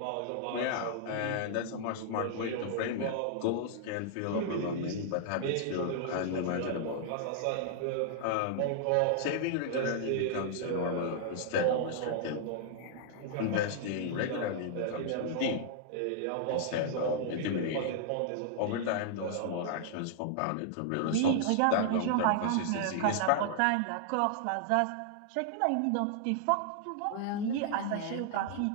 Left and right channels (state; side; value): different; both; correlation -0.01